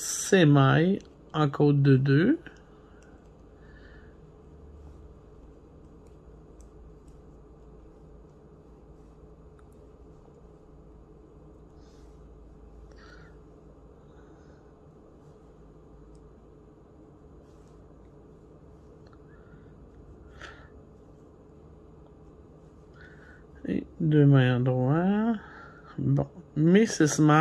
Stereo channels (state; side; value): identical; both; correlation 1.00